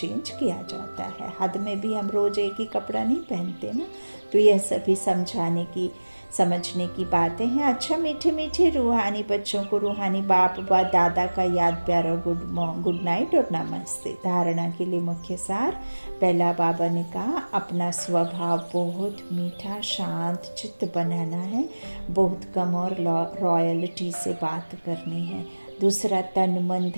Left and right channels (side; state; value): both; inverted; correlation -1.00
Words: किया जाता है। हद में भी हम रोज एक ही कपड़ा नहीं पहनते ना। तो यह सभी समझाने की, समझने की बातें हैं। अच्छा, मीठे मीठे रूहानी बच्चों को रूहानी बाप व दादा का याद प्यार और गुड नाइट और नमस्ते। धारणा के लिए मुख्य सार। पहला, बाबा ने कहा अपना स्वभाव बहुत मीठा शांत चित्त बनाना है, बहुत कम और रॉयल्टी से बात करनी है। दूसरा, तन मन